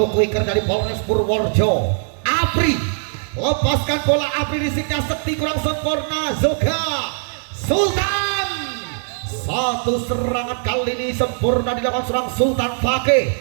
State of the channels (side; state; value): left; silent; digital silence